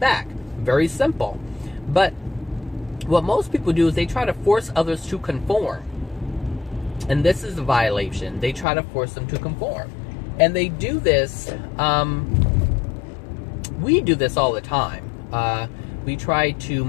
Very simple. But what most people do is they try to force others to conform. And this is a violation. They try to force them to conform. And they do this, we do this all the time. We try to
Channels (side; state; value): right; drops out; at 8.7 s